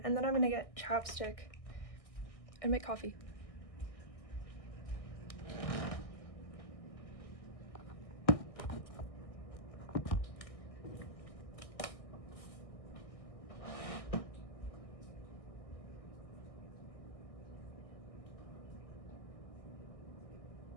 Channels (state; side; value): late; right; 1.6 ms